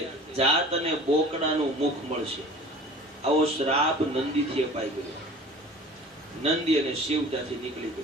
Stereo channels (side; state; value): both; normal; correlation 0.43